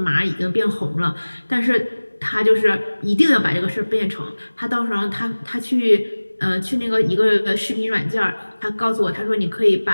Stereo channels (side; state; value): both; inverted; correlation -1.00